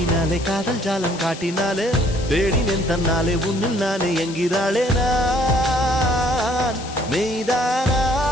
காதல் ஜாலம் காட்டினாலே தேடினேன் தன்னாலே உன்னில் நானே என்கிறாளே நான் மெய்தானா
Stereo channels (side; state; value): left; noise; hiss, 14 dB below the sound